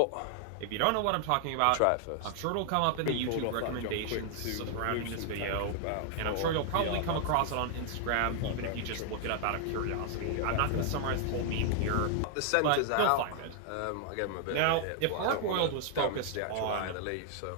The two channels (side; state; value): both; different; correlation 0.00